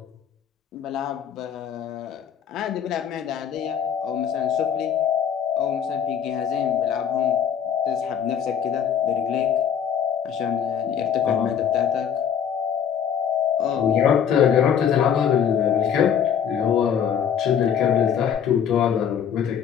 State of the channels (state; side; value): quieter; right; 8.2 dB